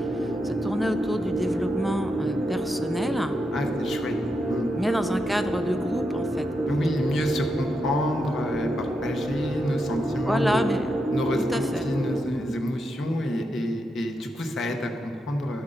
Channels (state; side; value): normal; both; correlation 0.84